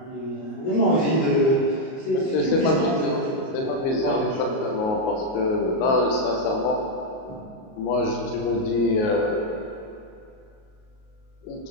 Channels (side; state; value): right; late; 38 ms